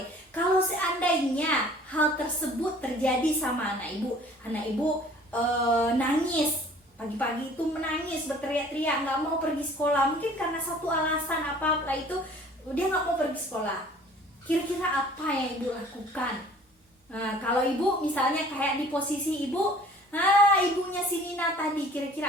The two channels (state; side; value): normal; both; correlation 0.51